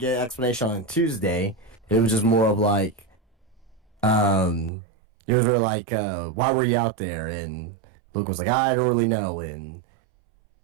an explanation on Tuesday. It was just more of like, it was really like, why were you out there? And Luke was like, I don't really know. And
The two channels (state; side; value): drops out; left; at 4.7 s